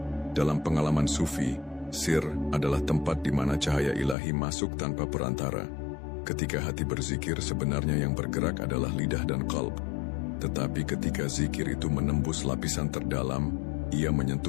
Dalam pengalaman sufi, sir adalah tempat di mana cahaya ilahi masuk tanpa perantara. Ketika hati berzikir, sebenarnya yang bergerak adalah lidah dan qalb. Tetapi ketika zikir itu menembus lapisan terdalam, ia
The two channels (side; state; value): right; drops out; at 4.2 s